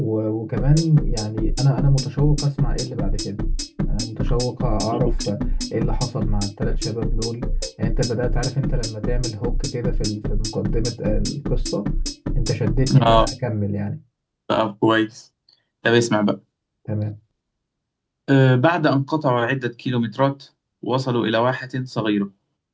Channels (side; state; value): both; identical; correlation 1.00